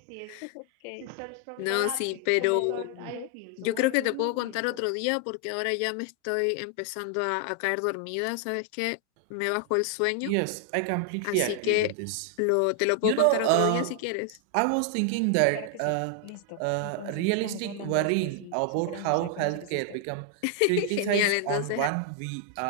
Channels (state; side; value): different; both; correlation 0.00